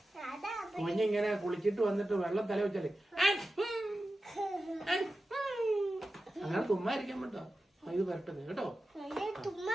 കുഞ്ഞിങ്ങനെ കുളിച്ചിട്ട് വന്നിട്ട് വെള്ളം തല വെച്ചാലേ അങ്ങനെ തുമ്മായിരിക്കാൻ പറ്റോ? ഇത് വരട്ടെ കേട്ടോ.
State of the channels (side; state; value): both; normal; correlation 0.93